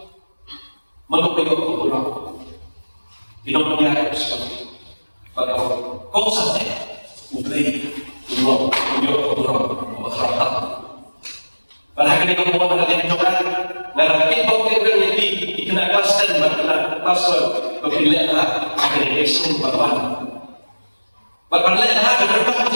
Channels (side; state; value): both; inverted; correlation -1.00